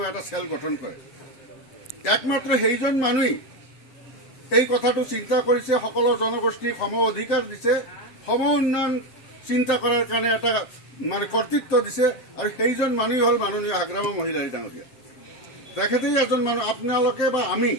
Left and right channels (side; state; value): right; late; 7.7 ms